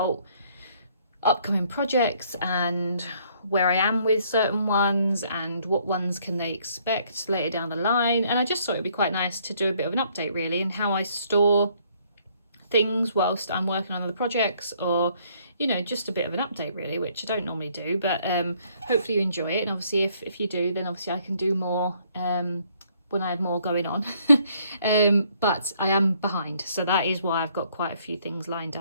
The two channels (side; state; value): both; inverted; correlation -0.65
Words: upcoming projects and where I am with certain ones and what ones can they expect later down the line, and I just thought it'd be quite nice to do a bit of an update really and how I store things whilst I'm working on other projects, or just a bit of an update really, which I don't normally do, but hopefully you enjoy it. And obviously if you do, then obviously I can do more when I have more going on. But I am behind, so that is why I've got quite a few things lined